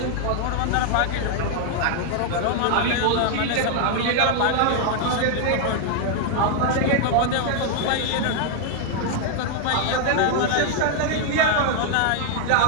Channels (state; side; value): different; both; correlation 0.00